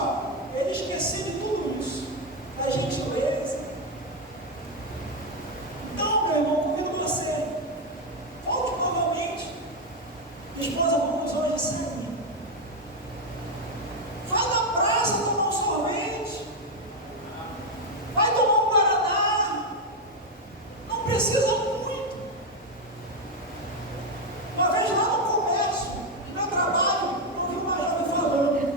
ele esquecia de tudo isso, da gentileza. Então, meu irmão, convido você, volte novamente. Esposa, vamos hoje sair. Vai na praça tomar um sorvete. Vai tomar um guaraná. Não precisa muito. Uma vez lá no comércio, no meu trabalho, eu vi uma jovem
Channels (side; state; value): both; normal; correlation 0.05